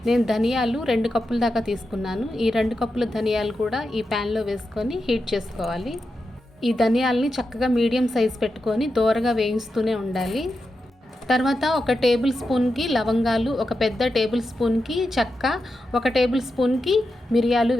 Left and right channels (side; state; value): both; normal; correlation 0.89